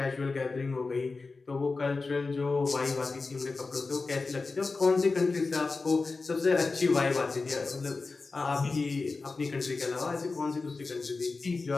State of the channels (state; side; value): quieter; right; 3.9 dB